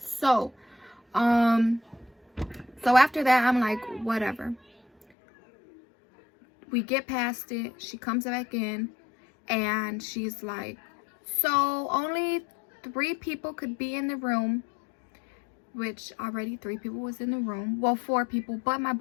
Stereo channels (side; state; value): right; drops out; at 5.1 s